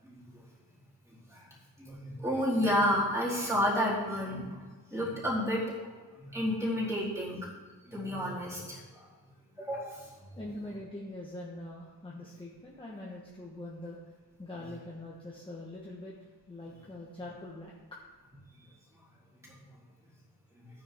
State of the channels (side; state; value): both; normal; correlation 0.50